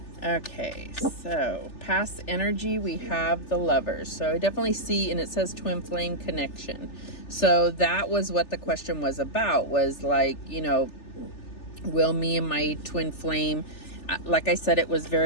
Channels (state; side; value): late; right; 3.4 ms